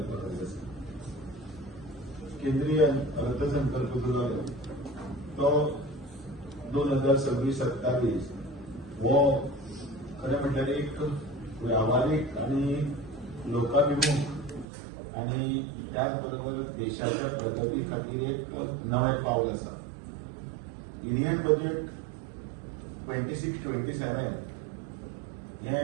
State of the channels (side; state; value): left; drops out; at 14.7 s